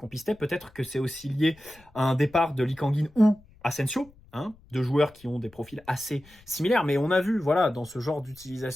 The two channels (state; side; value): noise; left; rumble, 27 dB below the sound